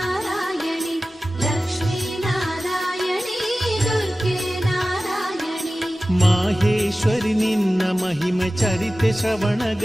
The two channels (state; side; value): normal; both; correlation 0.96